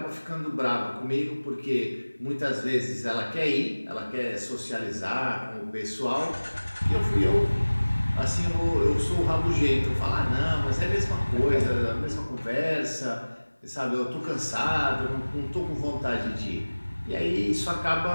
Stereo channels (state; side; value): inverted; both; correlation -1.00